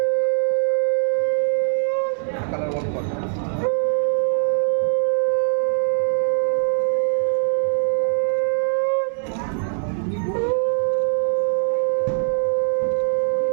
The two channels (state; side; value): silent; left; 65 dB below the other